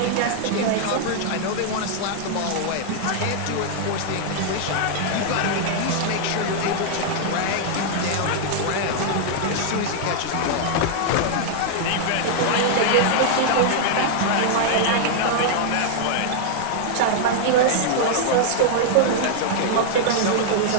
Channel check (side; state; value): both; different; correlation -0.01